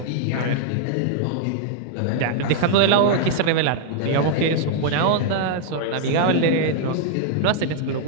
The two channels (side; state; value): both; different; correlation -0.01